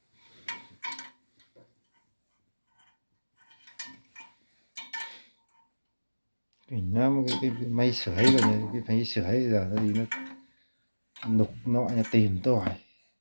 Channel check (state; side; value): inverted; both; correlation -1.00